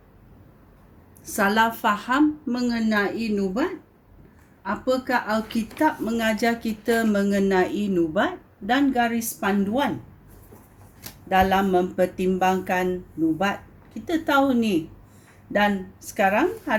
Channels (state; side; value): identical; both; correlation 1.00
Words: salah faham mengenai nubat? Apakah Alkitab mengajar kita mengenai nubat dan garis panduan dalam mempertimbangkan nubat? Kita tahu ni. Dan sekarang